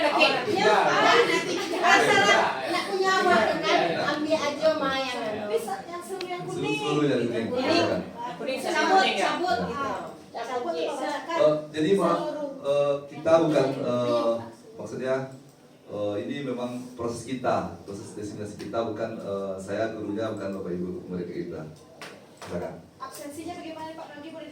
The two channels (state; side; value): identical; both; correlation 1.00